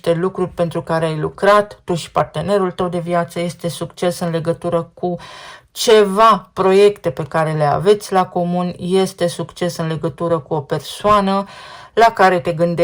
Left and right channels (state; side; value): identical; both; correlation 1.00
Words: lucruri pentru care ai lucrat, tu și partenerul tău de viață, este succes în legătură cu ceva proiecte pe care le aveți la comun, este succes în legătură cu o persoană la care te